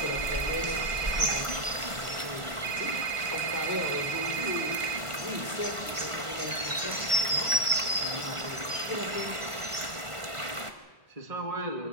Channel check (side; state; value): left; late; 1.5 ms